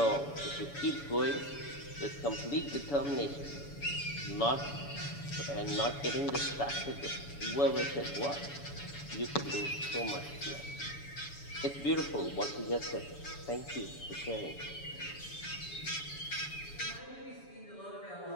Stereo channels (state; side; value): late; right; 7.0 ms